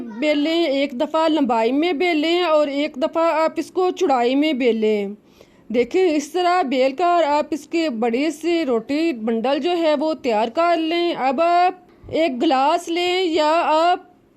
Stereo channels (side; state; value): both; identical; correlation 1.00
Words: बेलें, एक दफ़ा लंबाई में बेलें और एक दफ़ा आप इसको चौड़ाई में बेलें। देखिए इस तरह बेल कर आप इसके बड़ी सी रोटी बंडल जो है वो तैयार कर लें। अब आप एक गिलास लें या आप